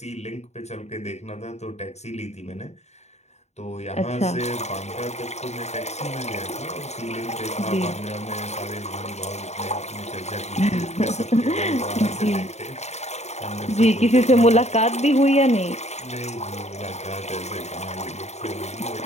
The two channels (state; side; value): late; right; 0.32 ms